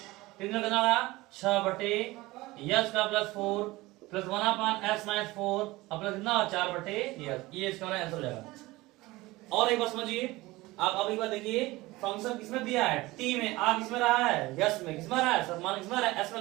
3 कितना होगा 6 बटे s का प्लस 4 प्लस 1/s - 4 अब प्लस कितना 4 बटे s, ये इसका आंसर हो जाएगा। और एक बात समझिए, आप अभी बात देखिए, फंक्शन किसमें दिया है t में, आ किसमें रहा है यस में, किसमें रहा है मान किसमें रहा है s में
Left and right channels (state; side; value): quieter; left; 20.0 dB